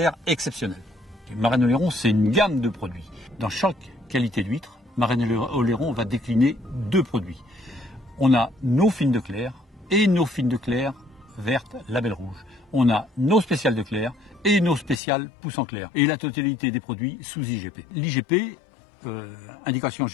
exceptionnelle. Marennes-Oléron, c'est une gamme de produits. Dans chaque qualité d'huître, Marennes-Oléron va décliner deux produits. On a nos fines de clair et nos fines de clair vertes label rouge. On a nos spéciales de clair et nos spéciales pousse en clair. Et la totalité des produits sous IGP. L'IGP, indication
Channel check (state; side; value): drops out; right; at 15.0 s